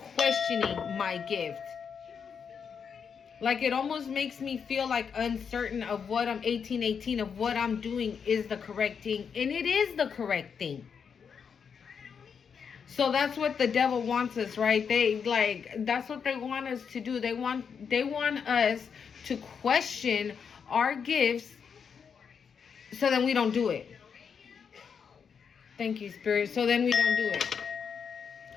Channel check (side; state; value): right; quieter; 6.6 dB